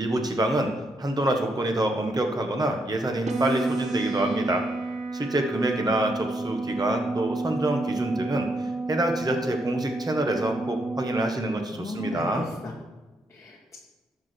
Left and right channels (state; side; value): normal; both; correlation 0.78